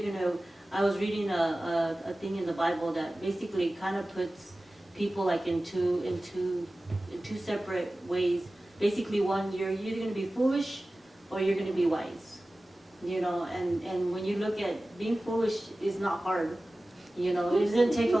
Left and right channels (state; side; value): normal; both; correlation 0.96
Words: gonna. I was reading a thing in the Bible that basically kind of puts people like in two separate ways. Basically, one, you're either going to be foolish or you're going to be wise. And when you look at being foolish is not hard. It doesn't take a